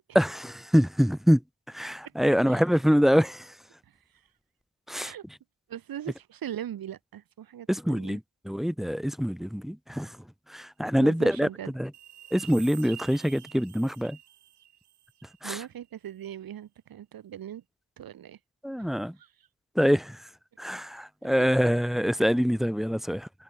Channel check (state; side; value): normal; both; correlation 0.98